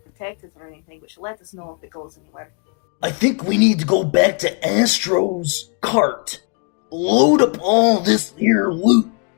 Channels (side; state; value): right; quieter; 38.1 dB